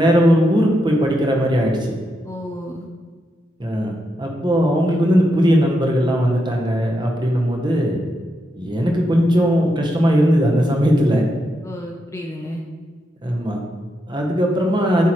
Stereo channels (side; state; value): both; normal; correlation 0.83